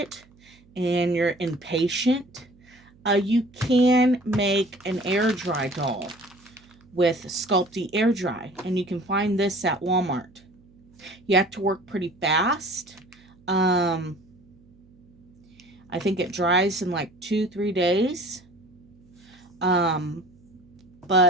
and you're impatient, you can make an air dry doll with Sculpey Air Dry, and you can find this at Walmart. You have to work pretty fast. I think it dries in like 2-3 days.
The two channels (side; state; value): right; noise; hum, 29 dB below the sound